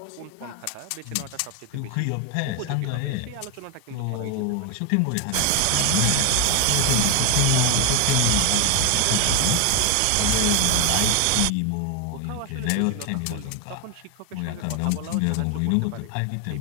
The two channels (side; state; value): both; different; correlation 0.01